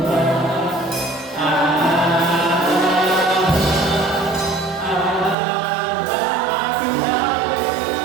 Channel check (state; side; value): drops out; left; at 5.4 s